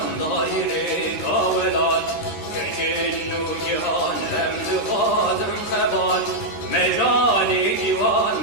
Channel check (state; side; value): late; right; 13 ms